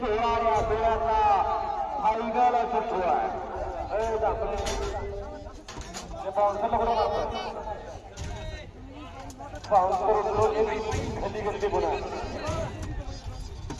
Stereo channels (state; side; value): identical; both; correlation 1.00